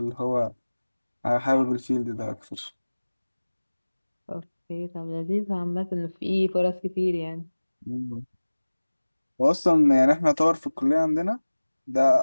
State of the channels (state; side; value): inverted; both; correlation -1.00